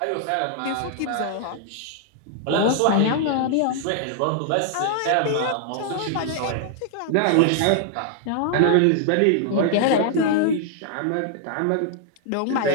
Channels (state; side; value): different; both; correlation -0.01